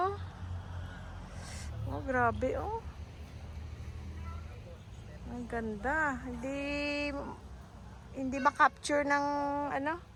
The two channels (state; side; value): identical; both; correlation 1.00